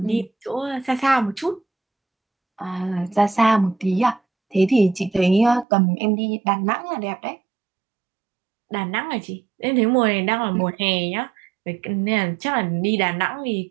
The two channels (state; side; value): drops out; left; at 5.7 s